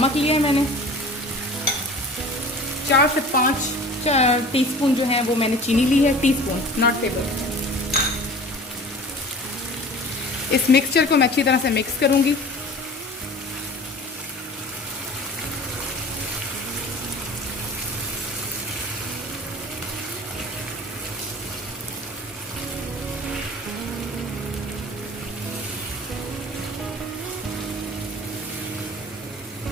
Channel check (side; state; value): both; normal; correlation 0.42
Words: लिया है मैंने। 4 से 5 टीस्पून जो है वो मैंने चीनी ली है, टीस्पून नॉट टेबल। इस मिक्सचर को मैं अच्छी तरह से मिक्स करूंगी।